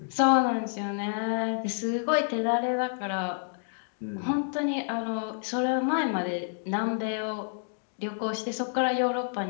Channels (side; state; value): right; silent; digital silence